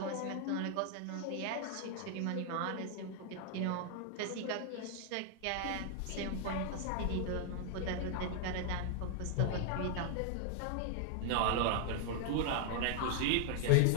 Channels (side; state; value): both; different; correlation 0.00